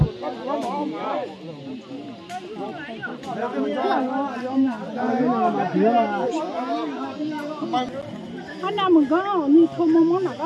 anh nào mình có như không mong nào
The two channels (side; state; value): both; identical; correlation 1.00